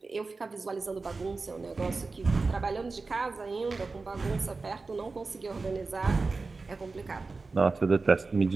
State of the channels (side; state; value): left; quieter; 3.9 dB